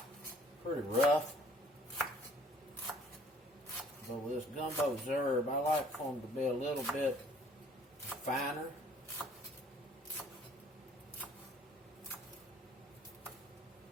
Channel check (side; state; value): both; normal; correlation 0.57